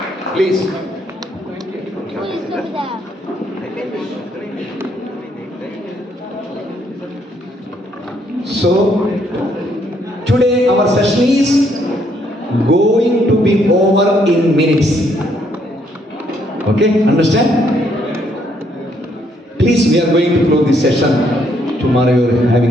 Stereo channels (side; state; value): both; normal; correlation 0.70